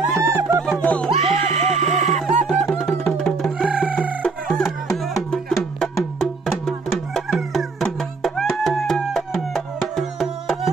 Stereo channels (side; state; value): left; quieter; 4.2 dB